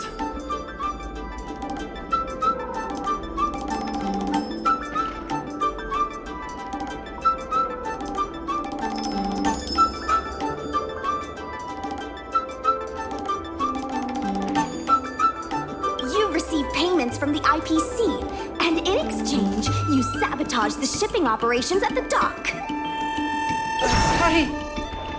You received payments from the IPC, and in exchange, you sabotaged the shipping operations at the dock.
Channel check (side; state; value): both; identical; correlation 1.00